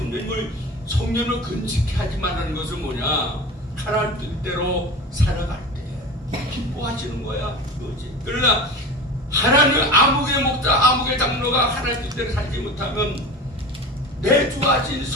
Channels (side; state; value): both; normal; correlation 0.33